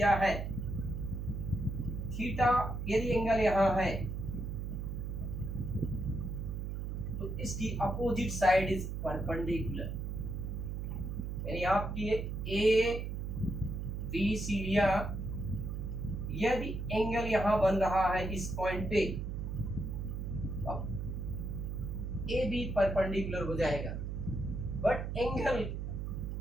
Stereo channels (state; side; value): noise; right; hum, 4 dB below the sound